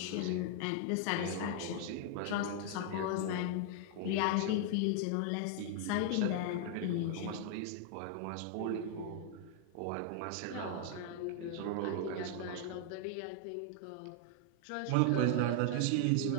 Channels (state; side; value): different; both; correlation 0.00